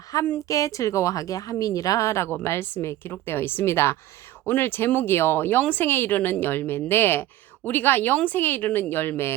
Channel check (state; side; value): quieter; left; 14.3 dB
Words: 즐거워하게 함이니라 라고 말씀에 기록되어 있습니다. 오늘 제목이요. 영생에 이르는 열매인데 우리가 영생에 이르는